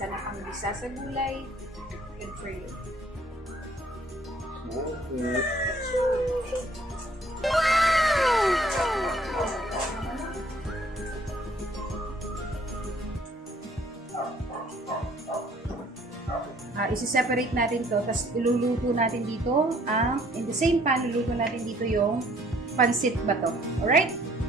na pangbisa sa gulay, good for you. Okay. Isi-separate natin to, tapos iluluto natin dito in the same pan, luluto natin dito yung Pansit Bato. Alright?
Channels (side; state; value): both; normal; correlation 0.60